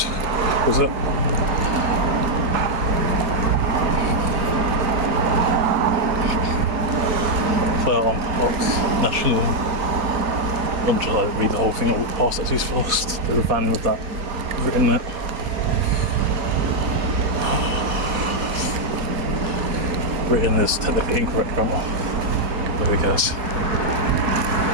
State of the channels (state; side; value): late; left; 4.2 ms